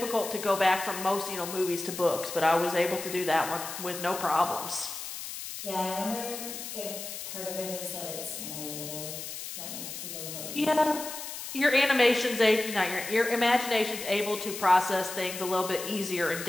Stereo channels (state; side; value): noise; left; hiss, 8 dB below the sound